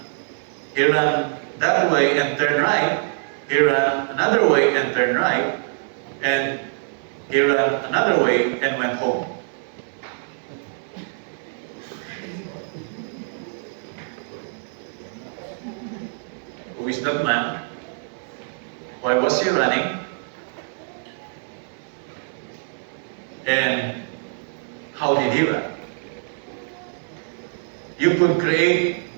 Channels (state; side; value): silent; left; 60 dB below the other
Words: that way and turn right. He ran another way and turned right. And he ran another way and went home. Who is that man? Why was he running? You could create